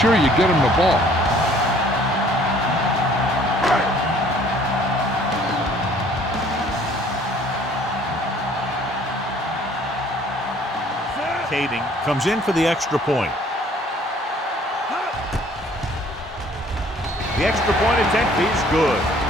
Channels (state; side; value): normal; both; correlation 0.57